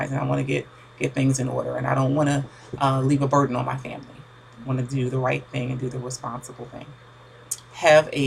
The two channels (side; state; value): both; identical; correlation 1.00